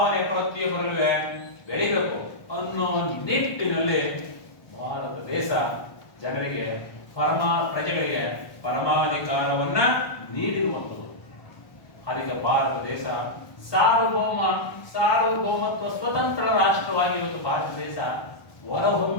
ಪ್ರತಿಯೊಬ್ಬರಲ್ಲೂ ಬೆಳಿಬೇಕು ಅನ್ನೋ ನಿಟ್ಟಿನಲ್ಲಿ ಭಾರತ ದೇಶ ಜನರಿಗೆ ಪ್ರಜೆಗಳಿಗೆ ಪರಮಾಧಿಕಾರವನ್ನ ನೀಡಿರುವಂಥದ್ದು. ಅದಕ್ಕೆ ಭಾರತ ದೇಶ ಸಾರ್ವಭೌಮತ್ವ ಸ್ವತಂತ್ರ ರಾಷ್ಟ್ರವಾಗಿ ಇವತ್ತು ಭಾರತ ದೇಶ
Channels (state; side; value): late; right; 1.2 ms